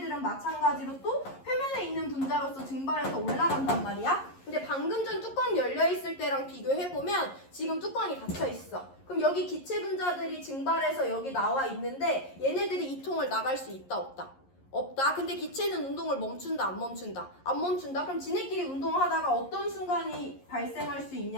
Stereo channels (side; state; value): right; late; 11 ms